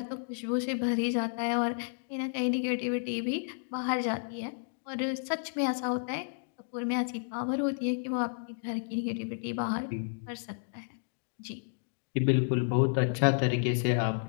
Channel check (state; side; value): silent; right; digital silence